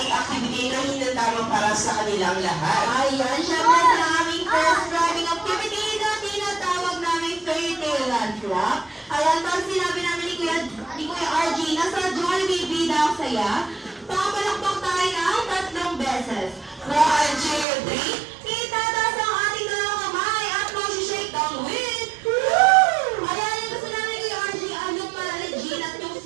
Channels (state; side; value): drops out; left; at 17.7 s